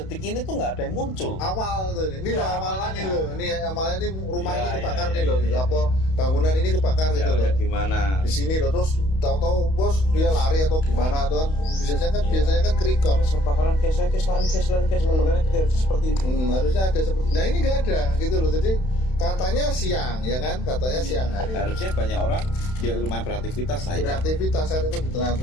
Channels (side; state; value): right; late; 31 ms